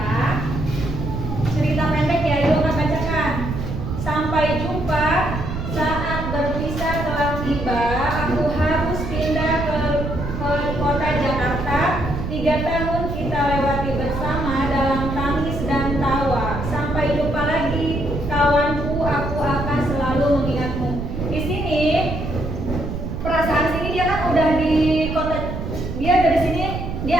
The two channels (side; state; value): right; noise; rumble, 5 dB below the sound